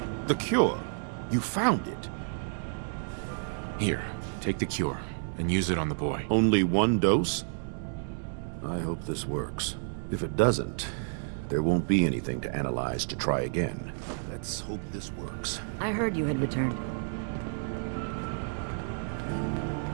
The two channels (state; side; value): silent; left; digital silence